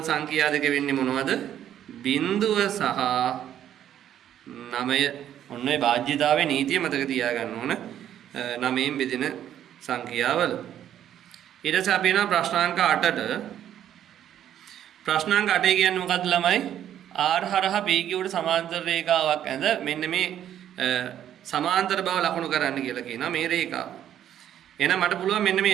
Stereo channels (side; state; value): left; quieter; 10.7 dB